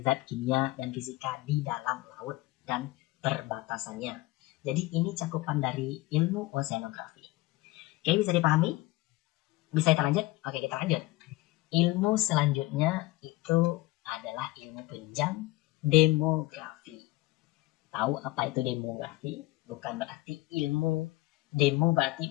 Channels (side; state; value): right; quieter; 19.1 dB